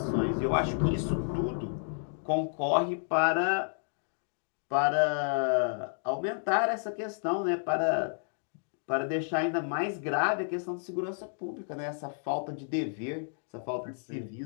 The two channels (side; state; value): right; silent; digital silence